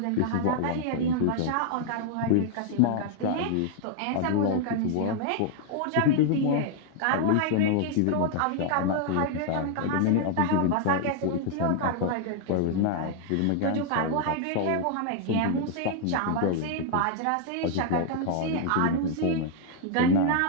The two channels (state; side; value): different; both; correlation 0.00